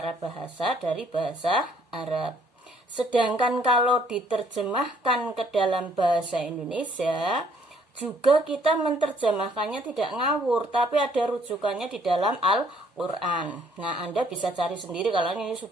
bahasa dari bahasa Arab. Sedangkan kalau diterjemahkan ke dalam bahasa Indonesia, juga kita menerjemahkannya tidak ngawur, tapi ada rujukannya di dalam Al-Quran. Nah, Anda bisa cari sendiri kalau ini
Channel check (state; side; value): normal; both; correlation 0.64